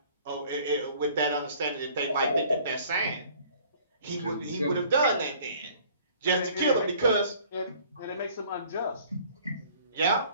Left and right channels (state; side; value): inverted; both; correlation -0.54